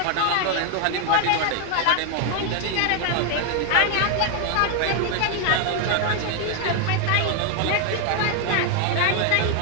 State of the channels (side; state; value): both; different; correlation 0.00